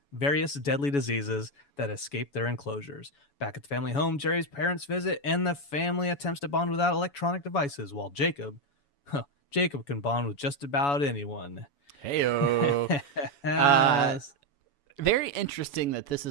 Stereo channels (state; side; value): late; right; 7.1 ms